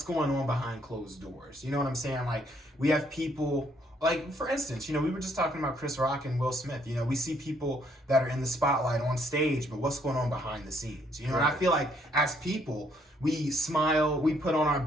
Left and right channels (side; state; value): both; normal; correlation 0.68